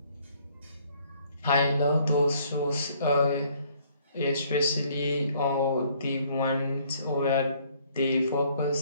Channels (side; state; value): both; inverted; correlation -0.62